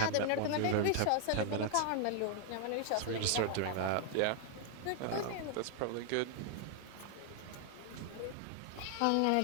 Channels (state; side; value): different; both; correlation 0.00